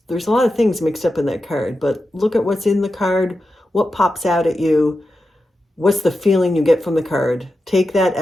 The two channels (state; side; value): normal; both; correlation 0.90